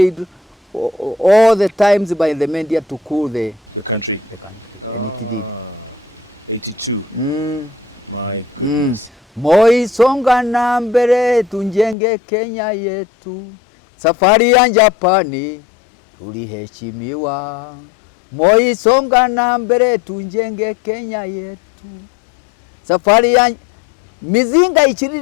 all the times by the media to cool the country. 82. My goodness. Moi songa na mbele tunjenge Kenya yetu. Safari ya Japani tuliheshimiwa. Moi songa na mbele tunjenge Kenya yetu. Safari ya mizinga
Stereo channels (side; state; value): right; drops out; at 12.0 s